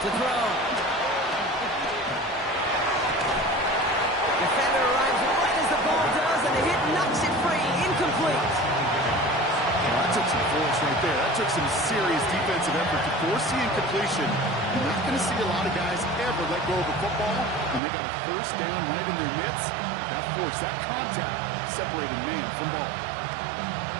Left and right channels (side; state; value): left; drops out; at 17.8 s